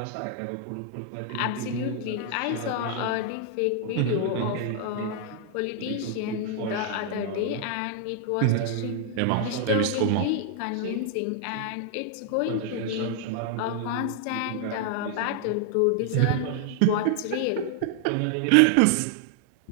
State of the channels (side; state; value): both; different; correlation 0.00